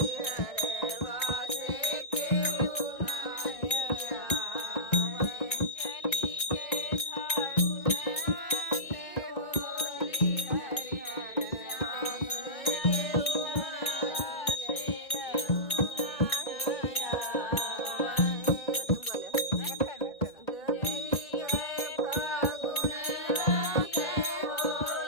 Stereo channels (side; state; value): right; late; 2.0 ms